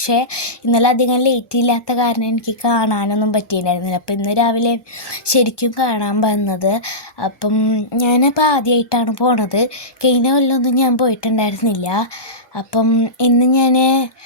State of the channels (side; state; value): right; late; 1.1 ms